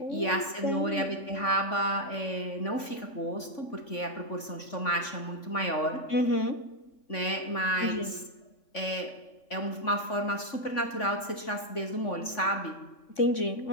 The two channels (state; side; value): late; right; 3.5 ms